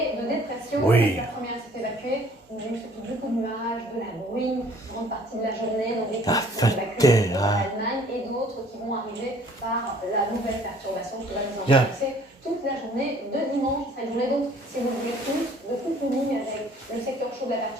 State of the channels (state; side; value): normal; both; correlation 0.56